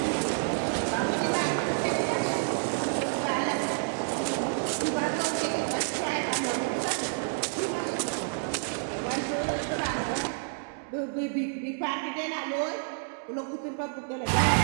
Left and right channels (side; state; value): left; silent; digital silence